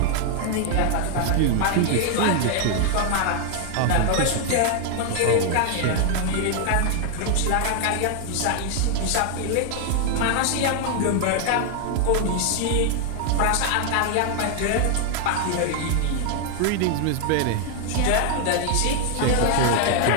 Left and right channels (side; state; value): both; different; correlation 0.00